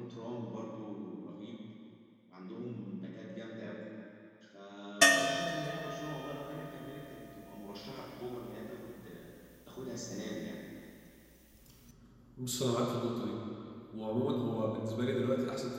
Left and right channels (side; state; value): both; identical; correlation 1.00